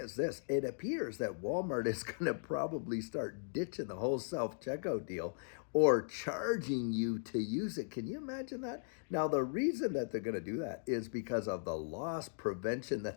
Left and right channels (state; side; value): silent; right; digital silence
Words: this, it appears that Walmart is going to probably start ditching the whole self checkout deal or charging you to use it. Can you imagine that? Now, the reason that they're going to do that is because of the loss prevention